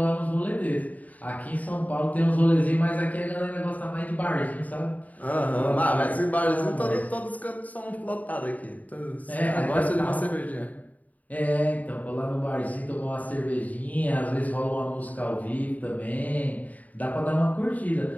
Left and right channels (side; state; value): right; late; 0.074 ms